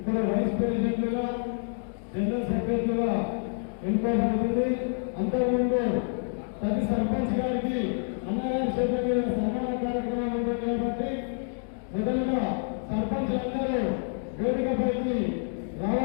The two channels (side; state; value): right; silent; 59 dB below the other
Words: వైస్ ప్రెసిడెంట్లుగా, జనరల్ సెక్రటరీగా ఎన్నుకోబడుతుంది. అంతకుముందు ప్రతి సర్పంచ్ గారికి అన్నగారి చేత మీద సన్మాన కార్యక్రమాలు ఉంటాయి కాబట్టి మొదలుగా సర్పంచ్లందరూ వేదికపైకి